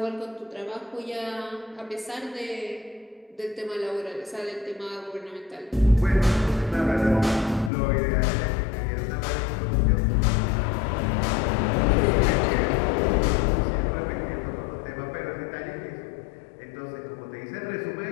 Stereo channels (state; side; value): drops out; right; at 7.7 s